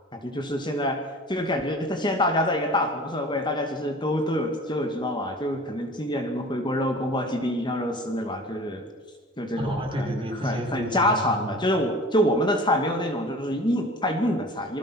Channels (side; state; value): both; normal; correlation 0.43